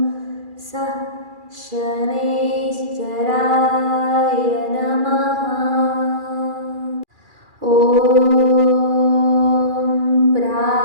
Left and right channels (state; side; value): late; left; 2.4 ms